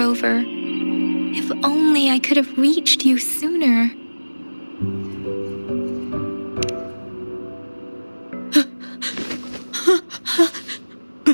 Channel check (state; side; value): inverted; both; correlation -1.00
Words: If only I could have reached you sooner.